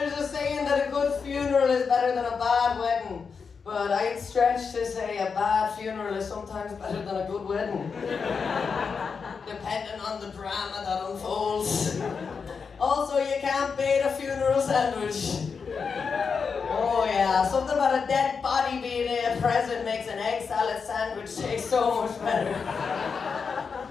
a saying that a good funeral is better than a bad wedding, but I'd stretch to say a bad funeral is sometimes better than a good wedding, depending on the drama that unfolds. Also, you can't bait a funeral sandwich. Oh yeah, something about a dead body being a present makes an egg salad sandwich taste so much better.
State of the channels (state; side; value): quieter; right; 5.6 dB